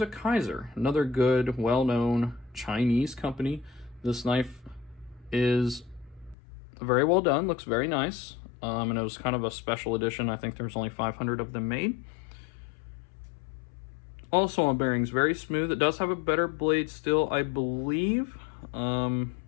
a Kaiser, another good, well-known Chinese company. This knife is very well done, looks very nice, and it was kind of a special edition. I think there's only 500 of them made. Also on bearings, very smooth. It does have a better blade still, I believe.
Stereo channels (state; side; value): drops out; right; at 6.4 s